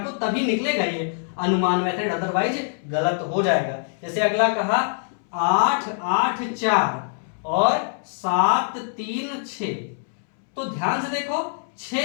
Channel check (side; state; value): right; silent; 63 dB below the other